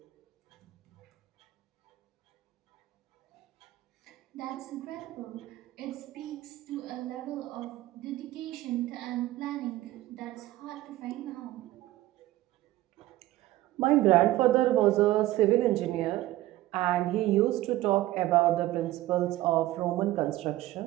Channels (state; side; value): quieter; left; 16.1 dB